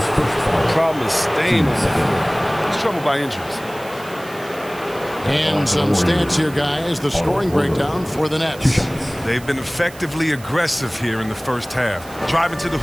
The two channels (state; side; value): noise; right; hiss, 20 dB below the sound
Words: problem is staying on the floor. He's troubled by injuries. And some stats here, guys. The scoring breakdown for the Nets. They've been effectively aggressive here in the first half, driving to the